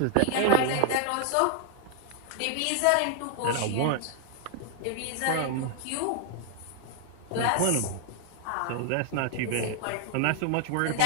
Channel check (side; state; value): both; different; correlation 0.00